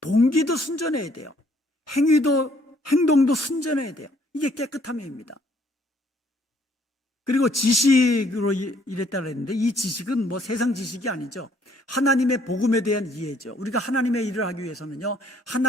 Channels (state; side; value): normal; both; correlation 0.64